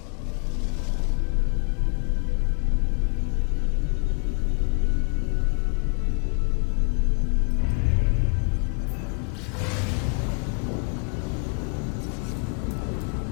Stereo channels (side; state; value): right; quieter; 38.6 dB